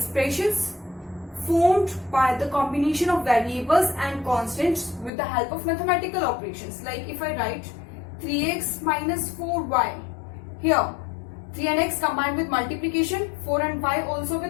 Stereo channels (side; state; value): right; drops out; at 5.1 s